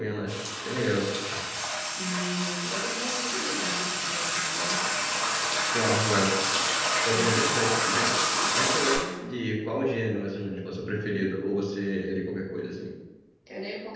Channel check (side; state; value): both; identical; correlation 1.00